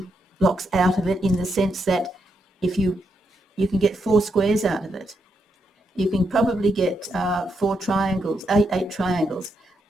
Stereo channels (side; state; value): both; normal; correlation 0.80